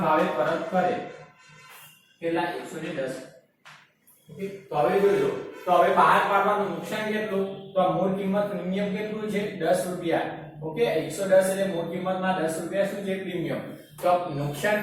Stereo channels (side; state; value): both; identical; correlation 1.00